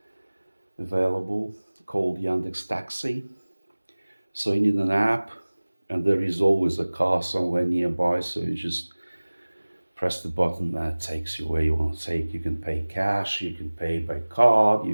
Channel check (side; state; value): both; inverted; correlation -1.00